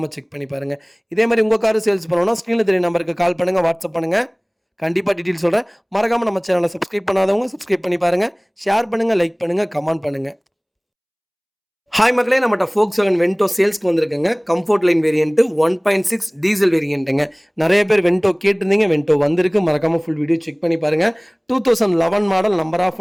செக் பண்ணி பாருங்கள். இதே மாதிரி உங்கள் கார் சேல்ஸ் பண்ணணும்னா ஸ்க்ரீனில் தெரிய நம்பருக்கு கால் பண்ணுங்கள், வாட்ஸ்அப் பண்ணுங்கள். கண்டிப்பாக டீட்டெயில் சொல்கிறேன். மறக்காமல் நம்ம சேனலை சப்ஸ்கிரைப் பண்ணாதவங்க சப்ஸ்கிரைப் பண்ணி பாருங்கள். ஷேர் பண்ணுங்கள், லைக் பண்ணுங்கள், கமெண்ட் பண்ணுங்கள். ஹாய் மக்களே, நம்மகிட்ட Volkswagen வென்டோ சேல்ஸ்க்கு வந்திருக்குங்க. கம்ஃபோர்ட் லைன் வேரியன்ட்டு 1.6 டீசல் வேரியன்ட்டுங்க. நிறைய பேர் வென்டோ கேட்டிருந்தீங்க. வென்டோ வந்திருக்கு. மறக்காமல் ஃபுல் வீடியோ செக் பண்ணி பாருங்கள். 2011 model, number of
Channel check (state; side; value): identical; both; correlation 1.00